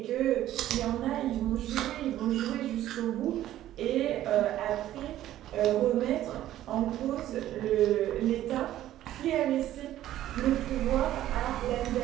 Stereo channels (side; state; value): left; quieter; 13.2 dB